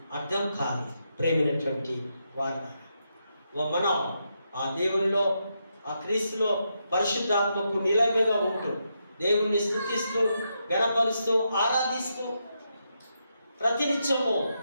అర్థం కాదు. ప్రేమైనటువంటి వారు, మనం ఆ దేవునిలో, ఆ క్రీస్తులో పరిశుద్ధాత్మకు నిలయంగా ఉంటూ దేవుణ్ణి స్తుతిస్తూ, గణపరుస్తూ, ఆరాధిస్తూ ప్రతినిత్యము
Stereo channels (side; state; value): both; inverted; correlation -0.82